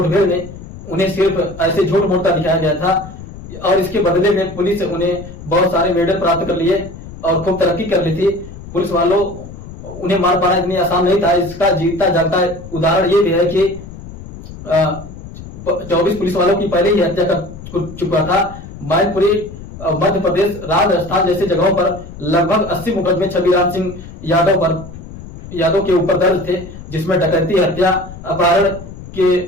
में उन्हें सिर्फ ऐसे झूठ मूठ का दिखाया गया था, और इसके बदले में पुलिस उन्हें बहुत सारे मेडल प्राप्त कर लिए और खूब तरक्की कर ली थी। पुलिस वालों उन्हें मार पाना इतनी आसान नहीं था। इसका जीता जागता उदाहरण ये भी है कि 24 पुलिस वालों की पहले ही हत्या कर चुका था। मैनपुरी मध्य प्रदेश, राजस्थान जैसे जगहों पर लगभग 80 मुकदमे छबीराम सिंह यादव के ऊपर दर्ज थे, जिसमें डकैती, हत्या, अपहरण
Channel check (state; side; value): noise; left; rumble, 14 dB below the sound